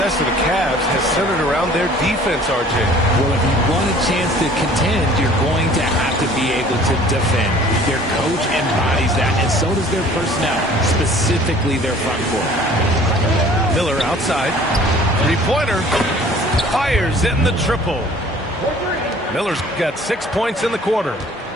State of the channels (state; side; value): normal; both; correlation 0.51